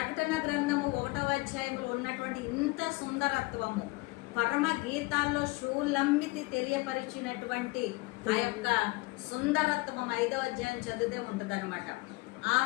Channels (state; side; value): quieter; right; 23.2 dB